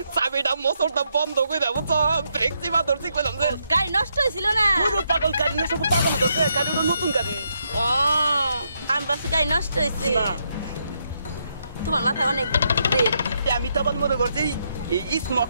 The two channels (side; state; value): both; inverted; correlation -0.78